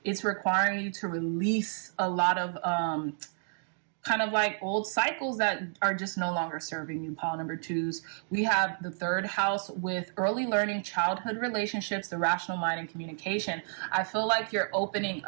it's requiring you to release a lot of kind of like old cycles that are just no longer serving you, pile number 2s. We have the 3rd house with early learning, childhood relationships, the rational mind, and communication. I feel like you're opening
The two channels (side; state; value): left; silent; digital silence